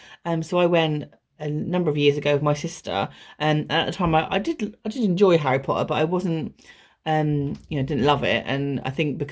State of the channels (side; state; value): both; identical; correlation 1.00